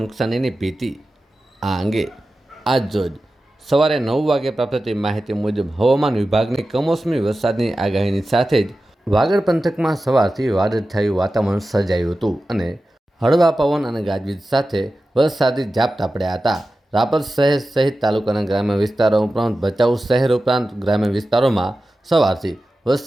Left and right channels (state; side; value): normal; both; correlation 0.94